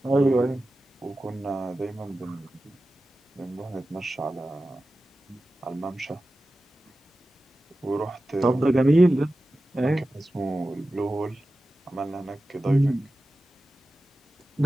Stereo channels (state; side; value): normal; both; correlation 0.94